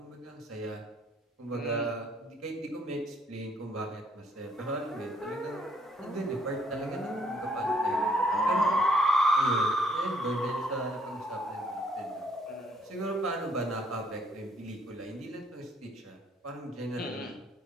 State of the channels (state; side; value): normal; both; correlation 0.66